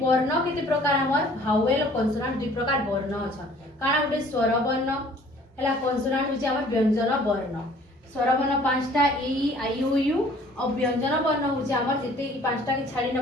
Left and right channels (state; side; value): normal; both; correlation 0.54